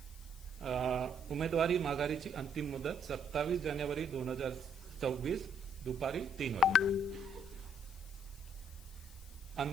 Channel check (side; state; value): left; noise; hiss, 21 dB below the sound